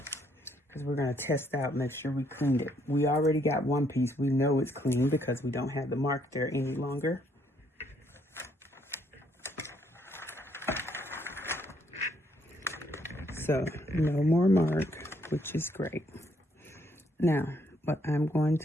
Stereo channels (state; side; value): normal; both; correlation 0.70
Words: Because we're going to test out, make sure we cleaned it. We already got one piece. We know it's clean because we don't have the mark there any longer. So, no more mark, which is great. Now, what I'm going